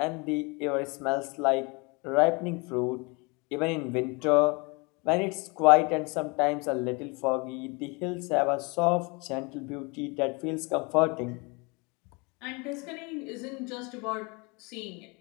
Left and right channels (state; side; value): quieter; right; 29.1 dB